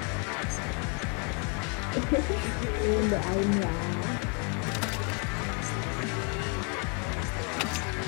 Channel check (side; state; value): right; quieter; 36.0 dB